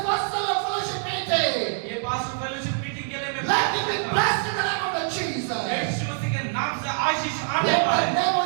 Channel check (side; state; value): left; silent; 61 dB below the other